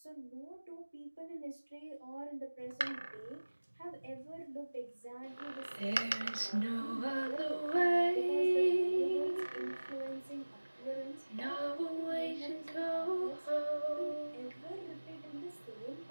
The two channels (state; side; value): inverted; both; correlation -1.00